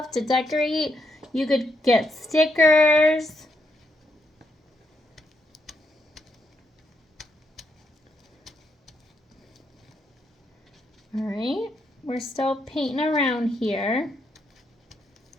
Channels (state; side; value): normal; both; correlation 0.79